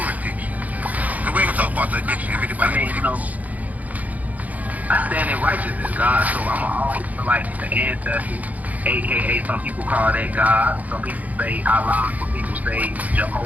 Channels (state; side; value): late; left; 0.077 ms